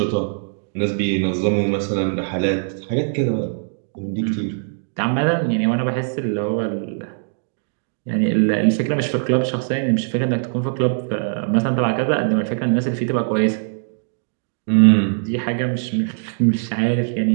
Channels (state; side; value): silent; left; digital silence